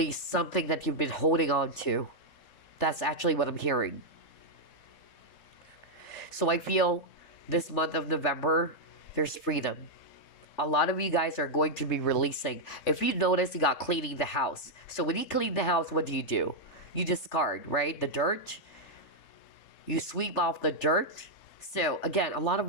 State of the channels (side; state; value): right; late; 3.4 ms